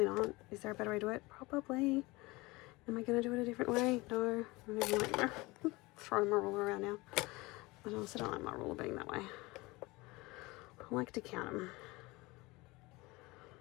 not. Is there a better way to do it? Probably. Am I going to do it a different way? No. I don't even like throwing my ruler around now. I also don't like my ruler being that way. I like to count them.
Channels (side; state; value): right; quieter; 22.6 dB